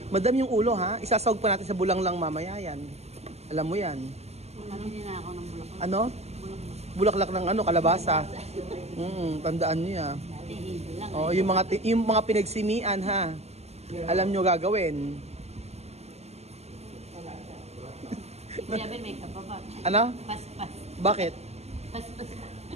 Madam yung ulo ha, isasawag pa natin sa bulang lang mamaya yan. Alam mo yan. Hindi na ako ng bulak. Ano? Bulaklak ng ano, kalabasa. Tandaan niyo ya. Oh, yung mga pinagsimian ha. Alam niyo gagawin. Sabi may kapaba. Ano? Pas-pas. Bakit? Pas-pas.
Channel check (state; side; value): late; left; 0.31 ms